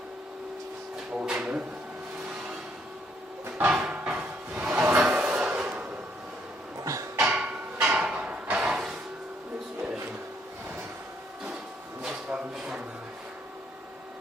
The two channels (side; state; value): both; normal; correlation 0.70